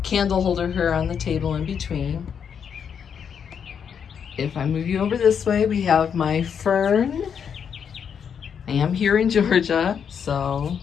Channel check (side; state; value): right; quieter; 7.4 dB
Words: candle holder here on the table in between. If I move you over this way, we have my fern. I am here in Georgia, so